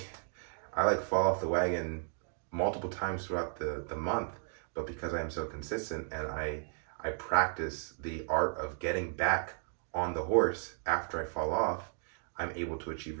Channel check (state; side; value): silent; left; digital silence